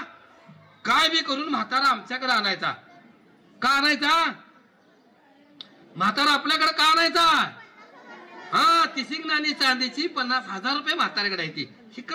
काय बी करून म्हातारा आमच्याकडे आणायचा. का आणायचा म्हातारा आपल्याकडे, का आणायचा. हा 30 नाणी चांदीची 50,000 रुपये म्हाताऱ्याकडे आहे ती,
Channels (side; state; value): both; identical; correlation 1.00